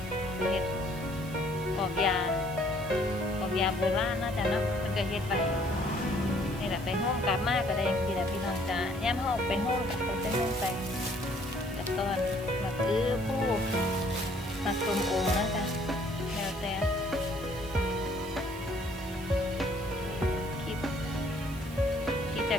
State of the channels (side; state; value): right; noise; hiss, 18 dB below the sound